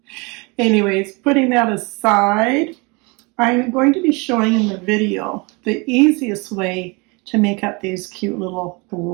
Anyways, putting that aside, I'm going to be showing in the video the easiest way to make up these cute little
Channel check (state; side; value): quieter; left; 28.4 dB